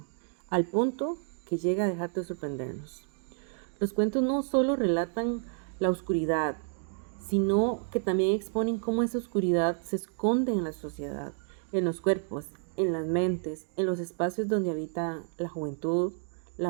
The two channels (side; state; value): left; silent; 57 dB below the other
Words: al punto que llega a dejar de sorprendernos. Los cuentos no solo relatan la oscuridad, sino que también exponen cómo esa oscuridad se esconde en la sociedad, en los cuerpos, en las mentes, en los espacios donde habita la juventud,